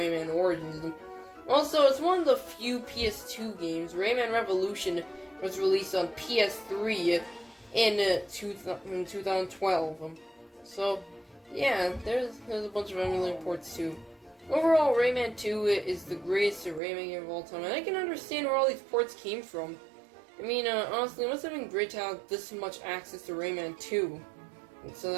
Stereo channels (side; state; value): left; drops out; at 16.8 s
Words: Origins. Also, it's one of the few PS2 games. Rayman Revolution was released on PS3 in 2012. So, yeah, there's a bunch of emulator ports too. Overall, Rayman 2 is the greatest Rayman game of all time, and I can understand where all these ports came from. I mean, honestly, it must have been great to have this much access to Rayman 2, so